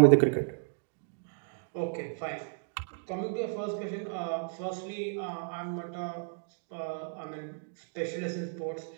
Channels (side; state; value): left; silent; digital silence